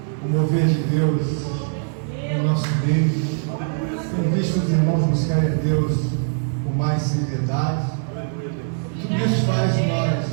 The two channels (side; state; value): left; silent; digital silence